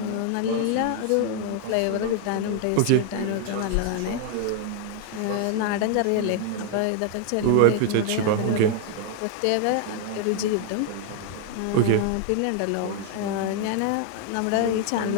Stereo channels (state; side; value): different; both; correlation 0.00